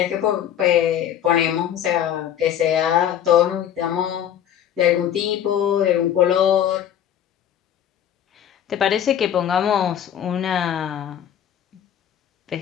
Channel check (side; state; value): right; quieter; 10.0 dB